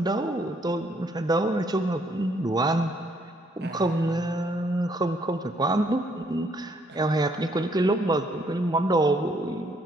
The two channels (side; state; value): both; normal; correlation 0.69